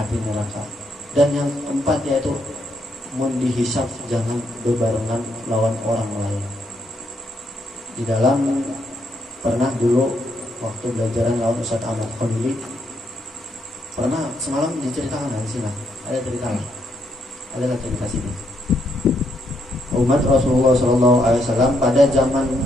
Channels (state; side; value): normal; both; correlation 0.77